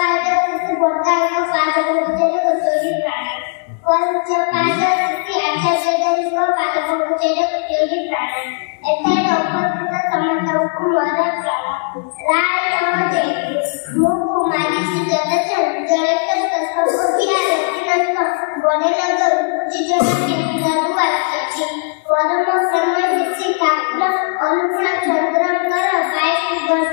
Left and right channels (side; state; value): right; silent; 61 dB below the other